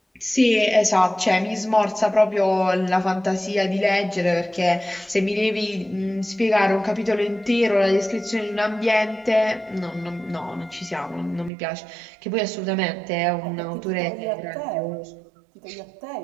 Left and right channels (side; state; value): left; drops out; at 11.5 s